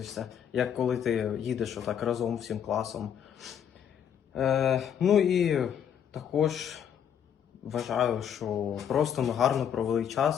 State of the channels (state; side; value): quieter; right; 8.7 dB